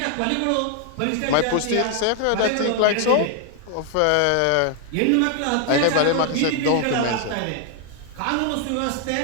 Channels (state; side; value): different; both; correlation 0.00